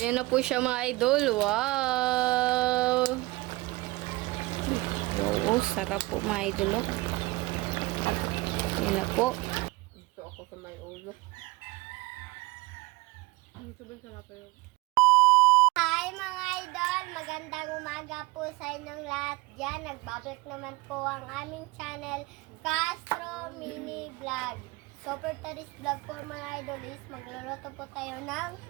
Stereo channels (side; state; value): left; quieter; 21.8 dB